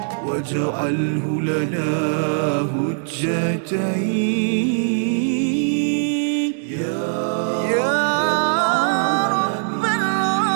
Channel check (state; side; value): silent; left; digital silence